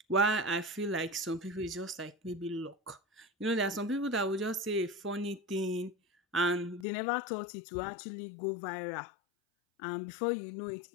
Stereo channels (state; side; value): drops out; right; at 6.9 s